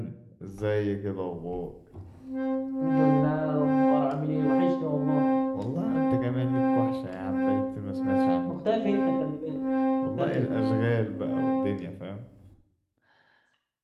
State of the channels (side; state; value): both; identical; correlation 1.00